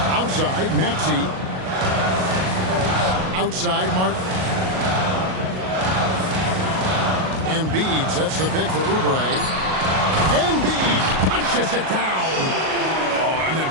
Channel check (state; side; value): late; left; 38 ms